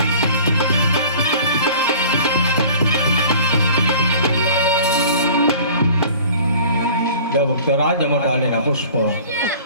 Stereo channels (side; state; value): both; inverted; correlation -0.45